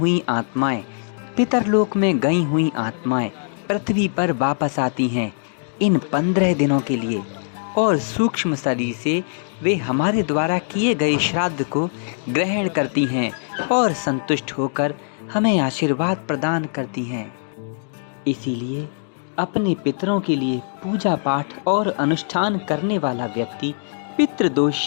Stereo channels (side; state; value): right; silent; digital silence